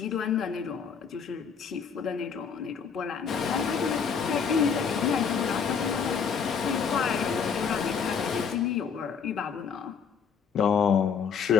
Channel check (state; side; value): quieter; right; 6.5 dB